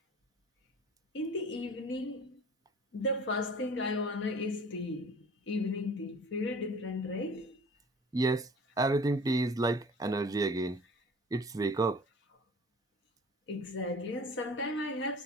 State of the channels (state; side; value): normal; both; correlation 0.45